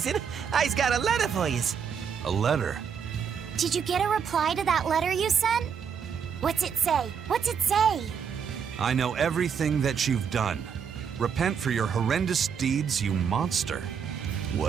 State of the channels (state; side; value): quieter; left; 7.1 dB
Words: I's got a letter for yous. A letter? Did you get a reply to that letter you sent? What's it say? What's it say? I know everything that you've done. Repent for your horrendous deeds, you monster.